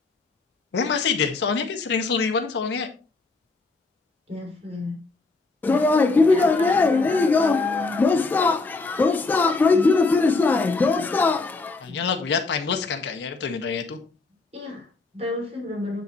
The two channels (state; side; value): quieter; right; 3.7 dB